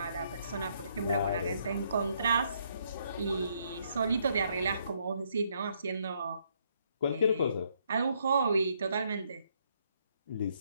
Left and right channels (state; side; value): inverted; both; correlation -0.72